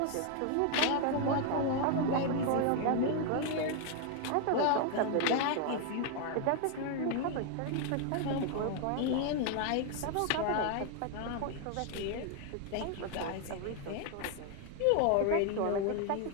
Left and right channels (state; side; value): different; both; correlation 0.01